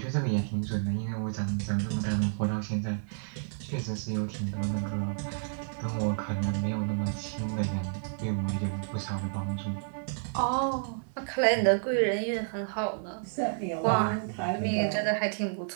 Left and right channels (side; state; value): left; silent; digital silence